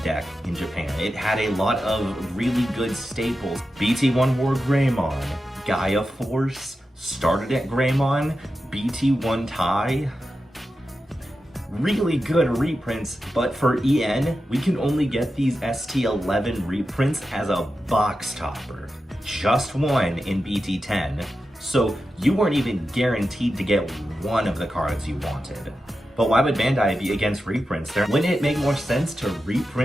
deck in Japan. It had a lot of really good staples. BT1 War Greymon, Gaia Force, Starter Deck Greymon, BT1 Tai. Really good reprints, but for EN, we can only get these ST11 reprints as a box topper. Just one in BT10, so you weren't even guaranteed to get one of the cards you wanted. But why would Bandai be against reprints? Wouldn't it make more sense to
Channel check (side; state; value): both; normal; correlation 0.91